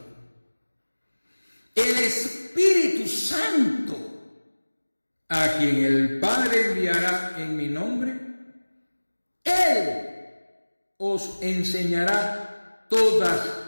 el Espíritu Santo, a quien el Padre enviará en mi nombre, Él os enseñará todas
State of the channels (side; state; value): both; inverted; correlation -1.00